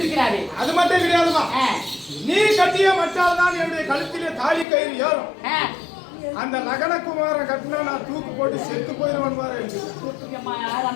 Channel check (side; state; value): right; drops out; at 4.7 s